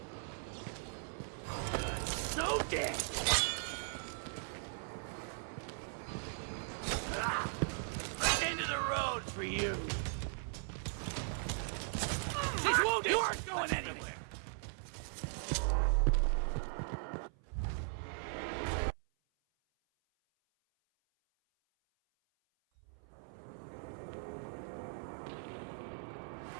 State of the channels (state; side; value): silent; left; 52 dB below the other